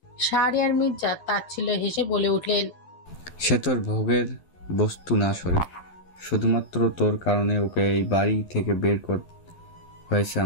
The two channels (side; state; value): right; late; 11 ms